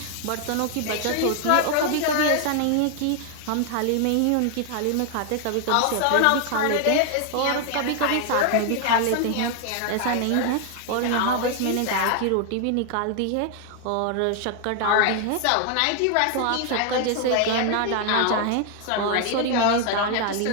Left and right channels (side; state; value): both; different; correlation 0.00